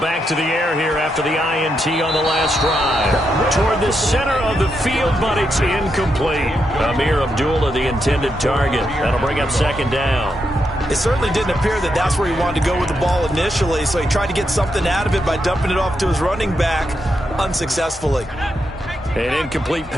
to the air here after the INT on the last drive. Toward the center of the field, but it's incomplete. Amir Abdullah, the intended target. That'll bring up 2nd down. It certainly didn't appear that that's where he wanted to go with the ball initially, so he tried to get something out of it by dumping it off to his running back unsuccessfully. An incomplete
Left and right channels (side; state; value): both; normal; correlation 0.83